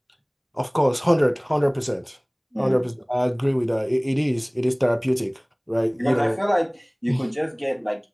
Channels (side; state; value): both; identical; correlation 1.00